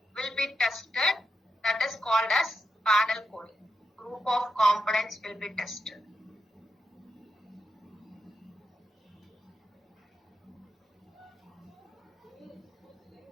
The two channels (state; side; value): normal; both; correlation 0.84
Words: will be tested. That is called as panel coding. Group of components will be tested.